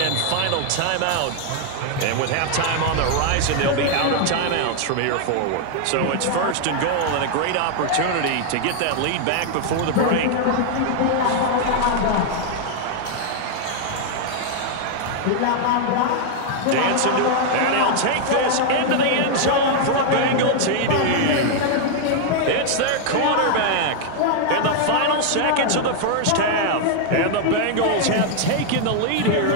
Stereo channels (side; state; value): both; different; correlation 0.00